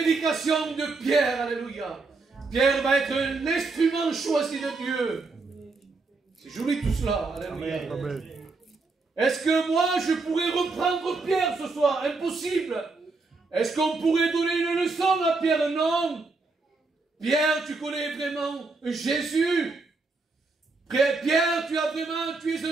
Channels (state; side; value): quieter; left; 3.8 dB